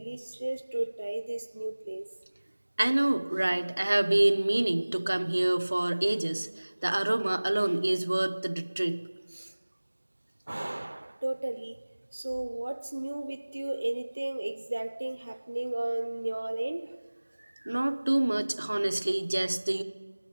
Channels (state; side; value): inverted; both; correlation -1.00